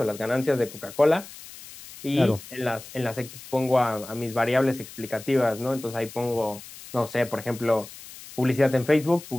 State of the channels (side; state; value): left; noise; hiss, 16 dB below the sound